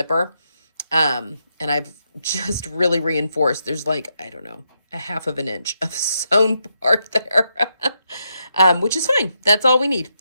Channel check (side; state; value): both; inverted; correlation -0.82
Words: And I've just really reinforced. There's like, I don't know, a 1/2 inch of sewn part there, which is fine. That's all we need.